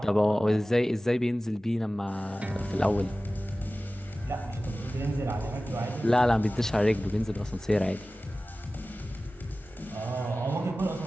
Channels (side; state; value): both; normal; correlation 0.96